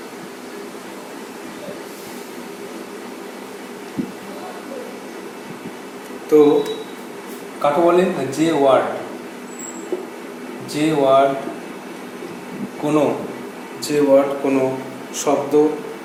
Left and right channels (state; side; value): identical; both; correlation 1.00